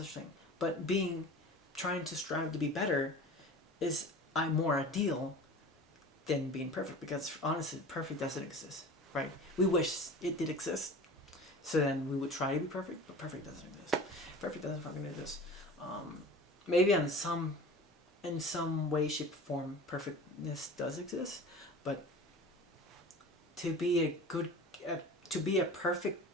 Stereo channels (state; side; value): normal; both; correlation 0.38